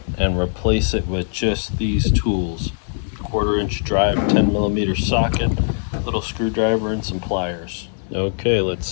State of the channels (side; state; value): right; silent; 65 dB below the other